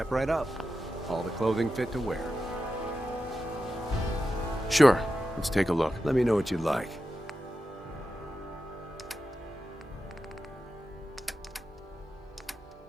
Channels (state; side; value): normal; both; correlation 0.90